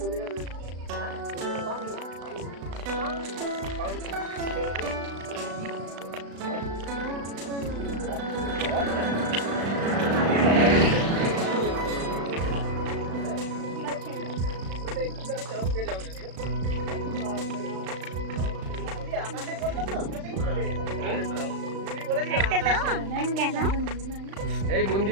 কোন জায়গায় রয়েছি? এই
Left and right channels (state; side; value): late; left; 36 ms